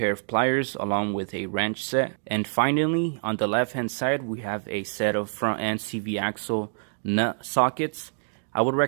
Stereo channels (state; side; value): silent; left; digital silence